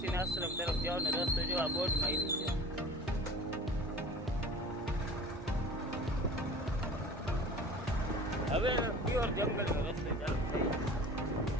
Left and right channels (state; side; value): normal; both; correlation 0.41